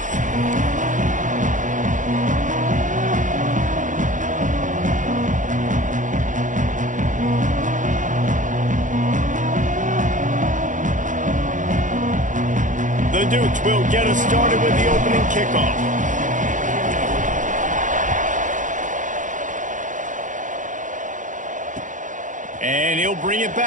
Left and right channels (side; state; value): left; late; 0.37 ms